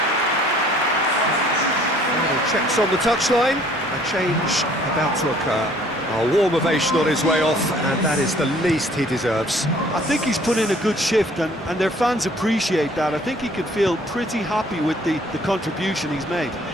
Final checks on the touchline. A change about to occur. A warm ovation on his way off, and that is the least he deserves. I think he's put in a good shift, and their fans appreciate that. I think he can feel pretty happy with the contribution he's made.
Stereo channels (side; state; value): both; normal; correlation 0.57